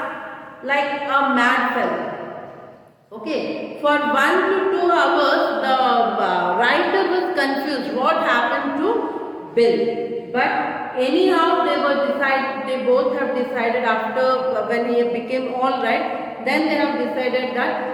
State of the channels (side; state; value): both; identical; correlation 1.00